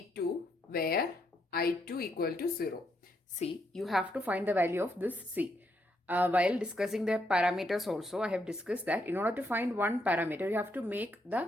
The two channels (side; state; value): both; normal; correlation 0.77